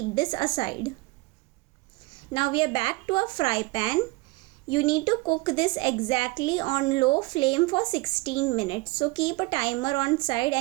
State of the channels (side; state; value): left; quieter; 23.0 dB